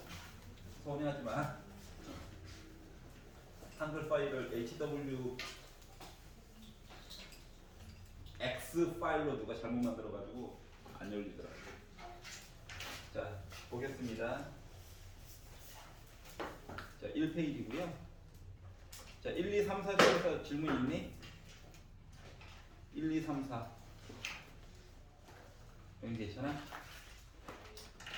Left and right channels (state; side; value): identical; both; correlation 1.00